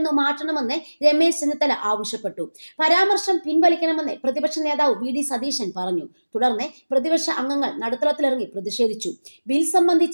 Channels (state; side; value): inverted; both; correlation -1.00